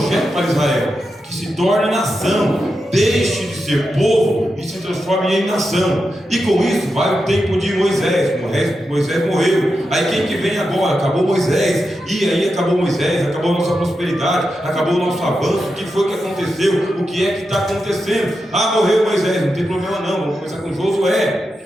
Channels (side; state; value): both; normal; correlation 0.88